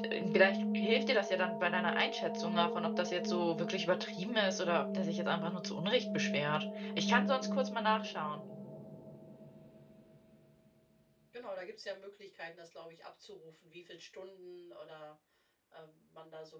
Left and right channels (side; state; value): both; identical; correlation 1.00